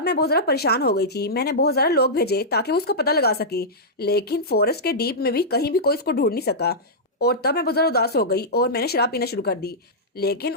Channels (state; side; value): normal; both; correlation -0.12